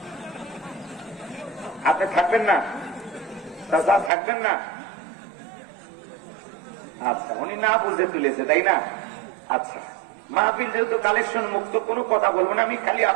আপনি থাকবেন না? থাকবেন না? আচ্ছা, উনি না বুঝে তুলেছে, তাই না? আচ্ছা, মাহফিল যেহেতু কালেকশন মুক্ত, কোনো কথা বলবো না আমি। খালি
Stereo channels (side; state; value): left; drops out; at 4.1 s